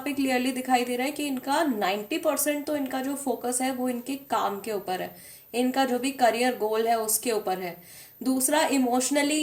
पे क्लियरली दिखाई दे रहा है कि इनका 90% तो इनका जो फोकस है वो इनके काम के ऊपर है, इनका जो भी करियर गोल है उसके ऊपर है। दूसरा, इमोशनली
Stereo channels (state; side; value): identical; both; correlation 1.00